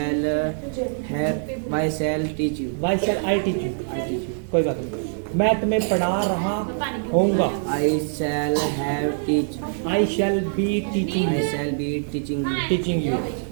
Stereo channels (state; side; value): silent; left; digital silence